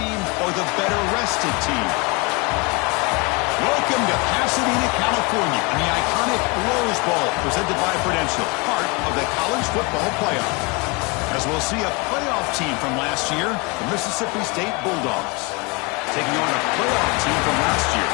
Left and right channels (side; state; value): right; quieter; 28.7 dB